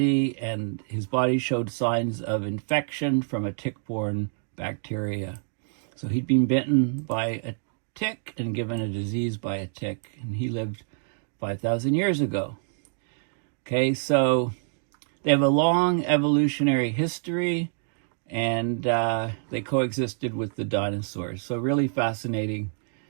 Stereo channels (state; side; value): silent; left; digital silence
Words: and his body showed signs of infection from a tick-borne bacteria. So he'd been bitten by a tick and given a disease by a tick, and he lived 5,000 years ago. Okay, so they have a long evolutionary history, and they coexisted with the dinosaurs. So really fascinating